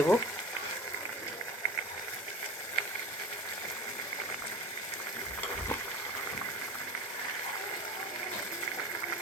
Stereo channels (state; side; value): normal; both; correlation 0.35